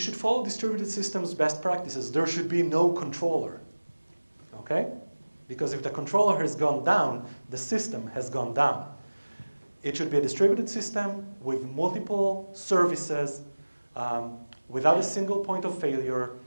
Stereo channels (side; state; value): both; inverted; correlation -1.00